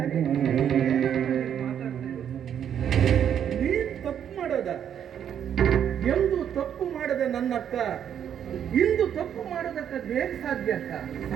ನೀನ್ ತಪ್ಪು ಮಾಡೋದ? ಎಂದು ತಪ್ಪು ಮಾಡದ ನನ್ನಕ್ಕ ಇಂದು ತಪ್ಪು ಮಾಡೋದಕ್ಕೆ ಹೇಗೆ ಸಾಧ್ಯ ಅಕ್ಕ?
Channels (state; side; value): quieter; left; 9.0 dB